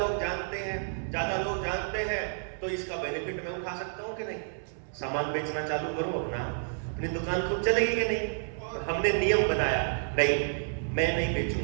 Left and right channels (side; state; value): left; silent; digital silence